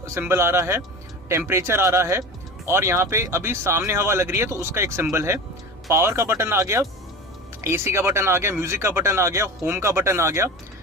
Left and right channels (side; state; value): both; normal; correlation 0.32